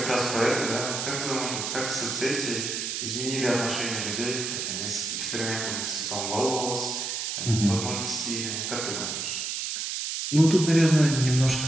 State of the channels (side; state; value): right; noise; hiss, 3 dB below the sound